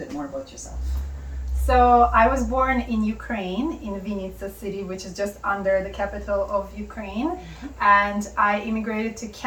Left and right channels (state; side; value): identical; both; correlation 1.00